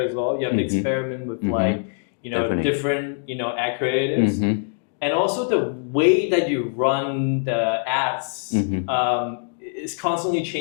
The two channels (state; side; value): silent; right; digital silence